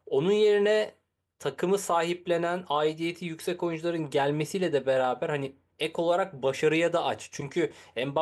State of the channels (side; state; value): both; identical; correlation 1.00